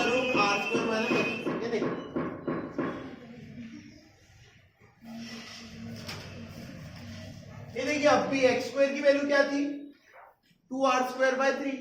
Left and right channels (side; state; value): both; identical; correlation 1.00